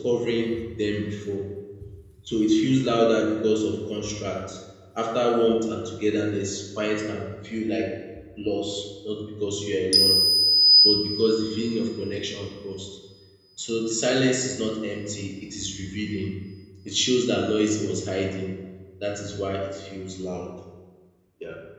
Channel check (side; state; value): both; identical; correlation 1.00